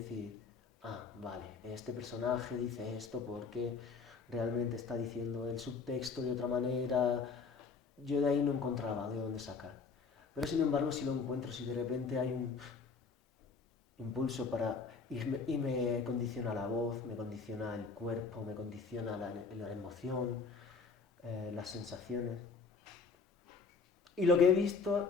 ah, vale, este personaje dice esto porque realmente está diciendo el subtexto de otra manera. Yo de ahí no encontraba de dónde sacar. Pero sin embargo, si lo encuentro, si de repente hay un impulso para... Y me condiciona la voz, me condiciona el cuerpo, me condiciona la emoción, las sensaciones. Y lo que he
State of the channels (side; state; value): right; quieter; 5.0 dB